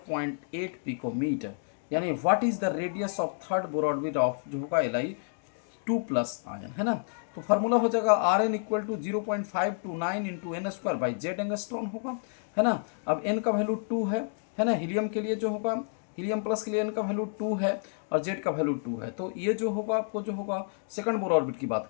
picometer, यानी what is the radius of third Bohr orbit of जो होगा Li2 प्लस आयन, है ना। तो फार्मूला हो जाएगा Rn equal to 0.529 into n square by z angstrom होगा, है ना। अब n का वैल्यू 2 है ना, हीलियम के लिए जो होगा, हीलियम प्लस के लिए n का वैल्यू 2 है और जेड का वैल्यू 2 है। तो ये जो होगा आपको जो होगा सेकंड बोर ऑर्बिट की बात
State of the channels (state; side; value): silent; right; digital silence